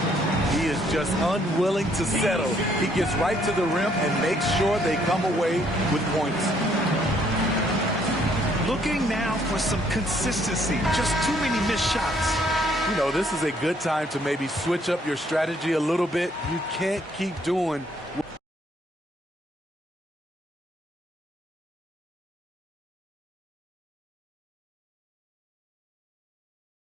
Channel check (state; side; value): normal; both; correlation 0.67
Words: He is just unwilling to settle. He gets right to the rim and makes sure they come away with points. Looking now for some consistency. Just too many missed shots. You know, this is a good time to maybe switch up your strategy a little bit. You can't keep doing